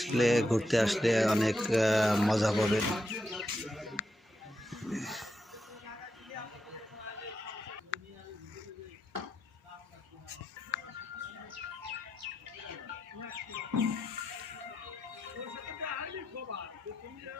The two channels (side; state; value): both; normal; correlation 0.83